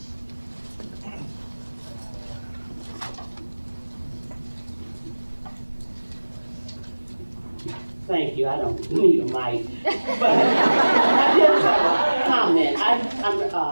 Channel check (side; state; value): both; inverted; correlation -1.00